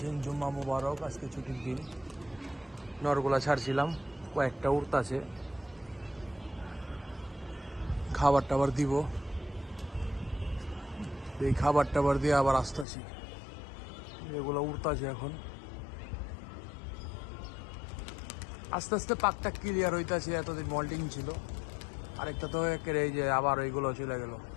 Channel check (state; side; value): drops out; right; at 12.9 s